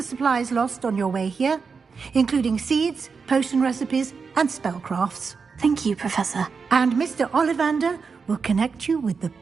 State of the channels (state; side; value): quieter; left; 5.3 dB